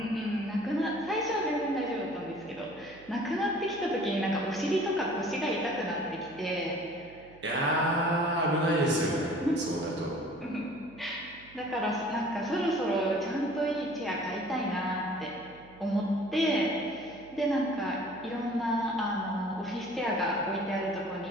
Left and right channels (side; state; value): right; noise; hum, 23 dB below the sound